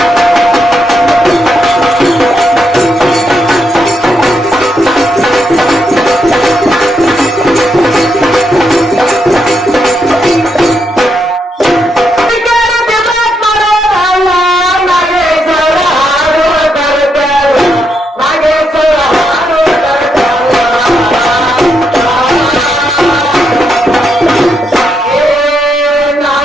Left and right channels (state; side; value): normal; both; correlation 0.80